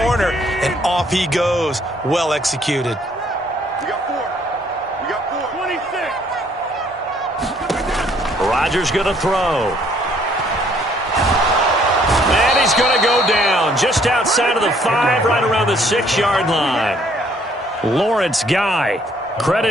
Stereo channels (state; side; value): normal; both; correlation 0.63